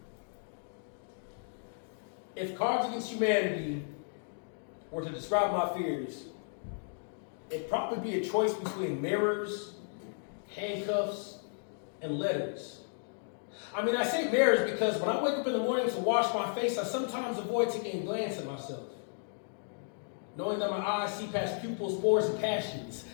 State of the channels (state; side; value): silent; right; digital silence